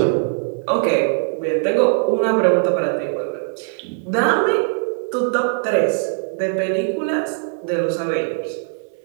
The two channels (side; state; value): left; silent; digital silence